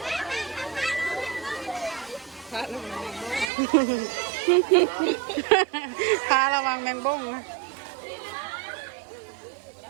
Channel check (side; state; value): left; drops out; at 3.5 s